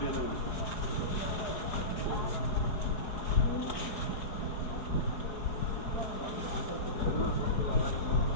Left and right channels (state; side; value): late; right; 4.8 ms